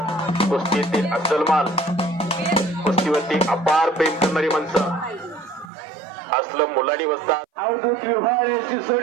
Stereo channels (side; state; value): left; drops out; at 5.7 s